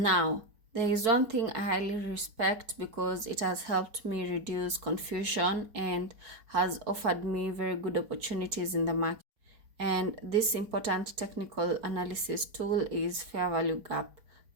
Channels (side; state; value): left; late; 4.6 ms